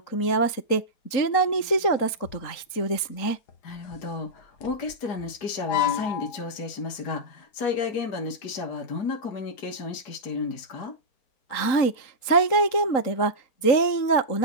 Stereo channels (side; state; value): right; late; 3.9 ms